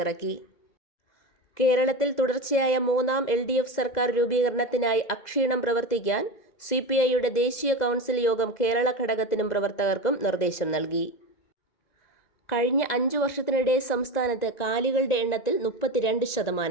കേരളത്തിൽ തുടർച്ചയായ 3ാം LDF സർക്കാർ രൂപീകരണത്തിനായി അക്ഷീണം പ്രവർത്തിക്കാൻ CPIയുടെ ദേശീയ കൗൺസിൽ യോഗം കേരള ഘടകത്തിനും പ്രവർത്തകർക്കും നിർദ്ദേശം നൽകി. കഴിഞ്ഞ 5 വർഷത്തിനിടെ സംസ്ഥാനത്ത് കാലികളുടെ എണ്ണത്തിൽ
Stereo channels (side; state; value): right; late; 2.0 ms